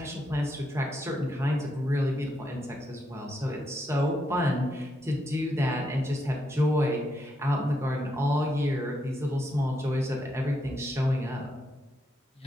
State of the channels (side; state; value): both; normal; correlation 0.80